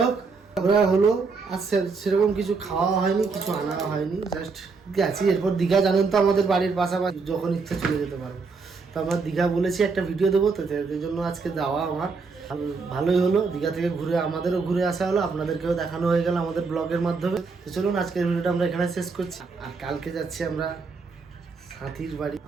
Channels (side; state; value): left; quieter; 4.6 dB